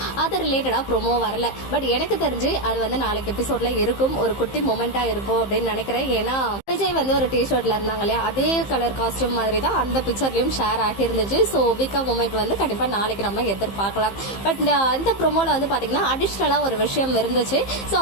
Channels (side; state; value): right; late; 15 ms